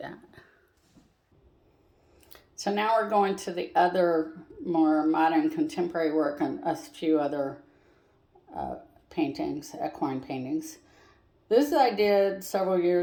that. So now we're going to the other more modern contemporary work and a few other paintings, equine paintings. This I did several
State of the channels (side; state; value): both; identical; correlation 1.00